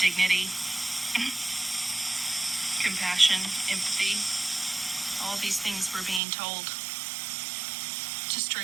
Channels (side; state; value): left; drops out; at 6.2 s